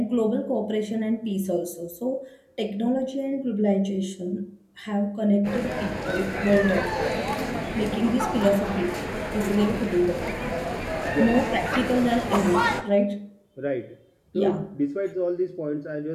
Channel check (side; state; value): both; identical; correlation 1.00